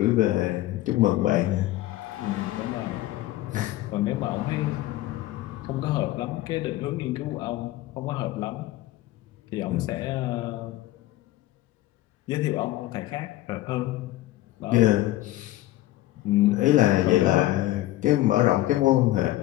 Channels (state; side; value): quieter; right; 16.1 dB